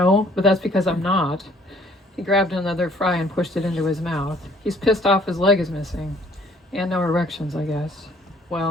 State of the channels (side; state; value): both; normal; correlation 0.59